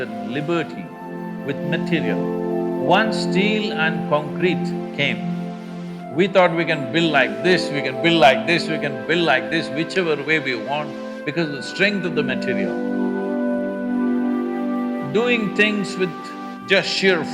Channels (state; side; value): identical; both; correlation 1.00